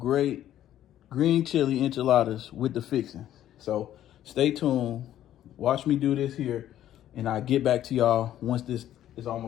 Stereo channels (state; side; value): quieter; right; 12.0 dB